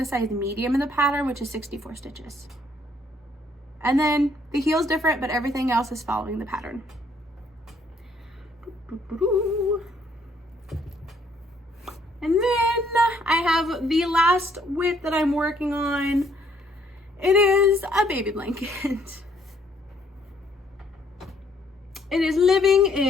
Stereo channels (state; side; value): normal; both; correlation 0.66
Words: size medium in the pattern, which is 64 stitches. And then the heel's different, but everything else is following the pattern. And then I have the last whip that I'm working on. It is a baby blanket. It is living